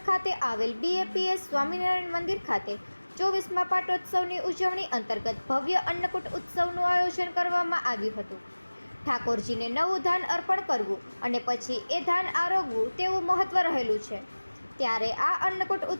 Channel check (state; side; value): inverted; both; correlation -1.00